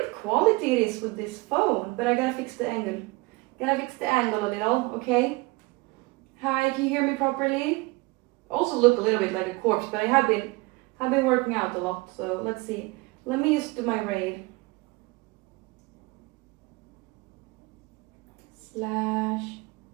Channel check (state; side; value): quieter; left; 24.0 dB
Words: quality it is with this phone. But I gotta fix the angle. Gotta fix the angle a little, okay? Hi, can you hear me properly? Also look a little bit like a corpse, but I have been working out a lot, so let's see. Let me just do my raid. /raid